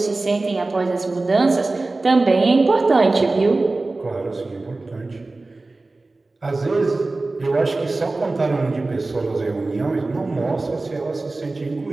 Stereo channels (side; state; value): left; quieter; 3.2 dB